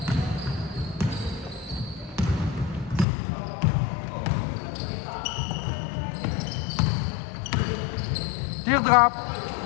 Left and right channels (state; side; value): drops out; right; at 3.1 s